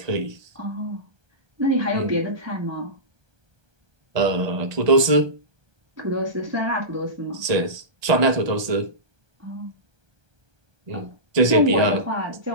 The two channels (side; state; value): left; late; 1.2 ms